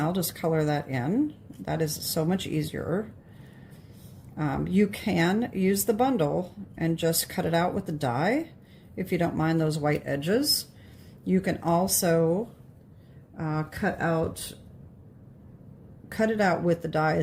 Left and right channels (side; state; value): both; identical; correlation 1.00